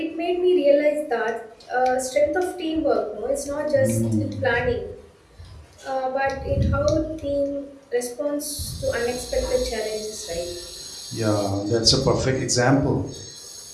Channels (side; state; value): both; identical; correlation 1.00